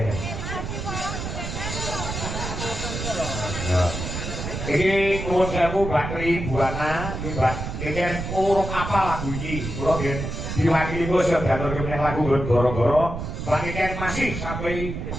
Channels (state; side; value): noise; right; rumble, 5 dB below the sound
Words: Iki nuwun sewu Mbak Tribuana, iki kan urung apa lagu iki. Kula nggih diwakili kula siap diaturke meneh lagu goro-goro. Mbak Iken masih sampai